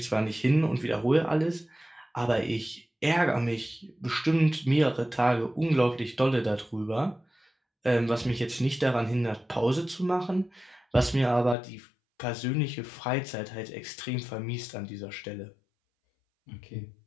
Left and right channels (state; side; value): drops out; right; at 11.6 s